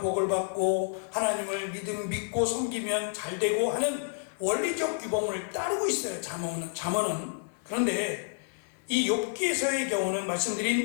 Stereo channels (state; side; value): silent; right; digital silence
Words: 복을 받고 하나님을 믿고 섬기면 잘 되고 하는 원리적 규범을 따르고 있어요. 잠언은. 그런데 이 욥기에서의 경우는